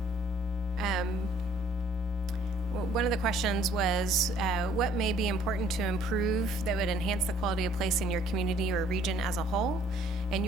One of the questions was, what may be important to improve that would enhance the quality of place in your community or region as a whole? And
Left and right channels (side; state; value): both; normal; correlation 0.59